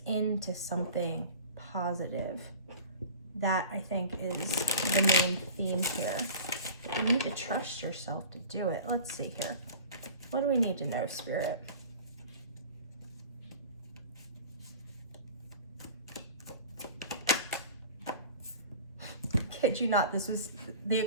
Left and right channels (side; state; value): both; inverted; correlation -0.40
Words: into something positive. That, I think, is the main theme here. You need to trust yourself to do it. Let's see here. What do we need to know, Spirit? Kid you not, this was the